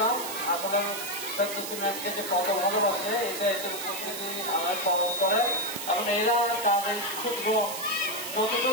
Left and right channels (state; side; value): noise; right; hiss, 7 dB below the sound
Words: আসলে সিমেন্টকে যে কত ভালোবাসে এটা এদের উপস্থিতি আমার পালন করে এবং এরা তাদের ক্ষুদ্র যতটুকু